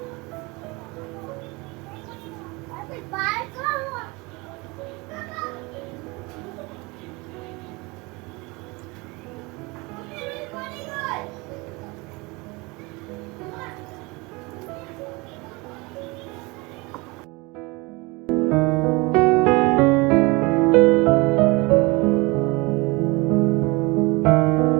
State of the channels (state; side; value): quieter; left; 25.5 dB